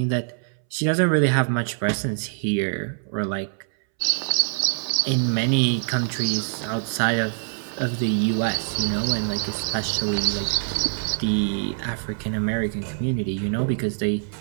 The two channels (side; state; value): left; silent; 62 dB below the other